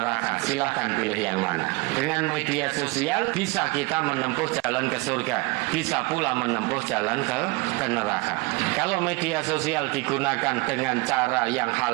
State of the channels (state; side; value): quieter; left; 25.7 dB